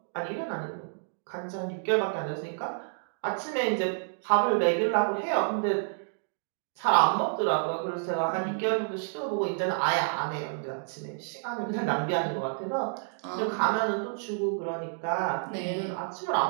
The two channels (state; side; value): silent; left; digital silence